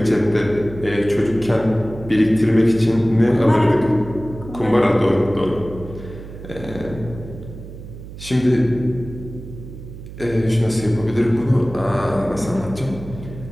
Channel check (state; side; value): noise; right; hum, 13 dB below the sound